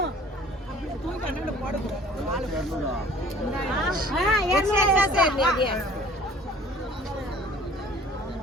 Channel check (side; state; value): both; normal; correlation 0.50